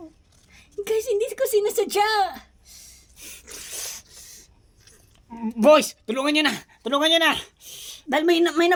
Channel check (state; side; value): identical; both; correlation 1.00